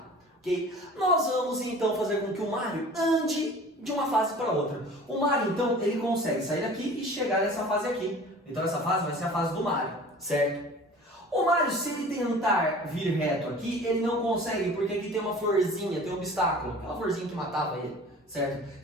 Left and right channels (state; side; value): normal; both; correlation 0.43